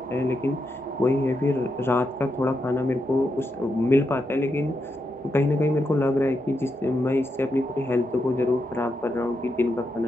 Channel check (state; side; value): normal; both; correlation 0.84